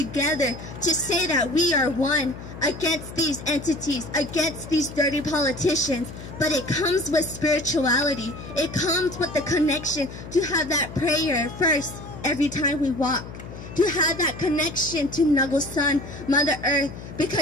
to say that we are one against these entities, against these dirty politicians. But it comes with spirituality. It comes with the connection to have that prayer first every time we walk. To have that connection to Nugglesun, Mother Earth,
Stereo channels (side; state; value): left; noise; hum, 13 dB below the sound